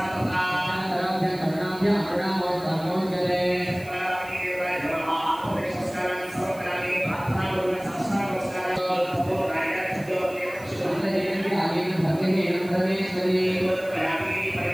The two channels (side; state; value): right; noise; hiss, 21 dB below the sound